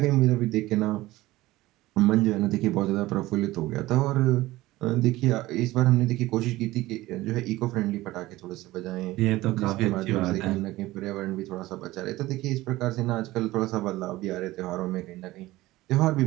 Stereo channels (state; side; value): quieter; left; 17.9 dB